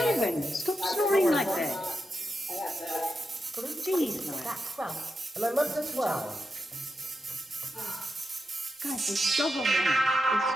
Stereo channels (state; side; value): normal; both; correlation 0.87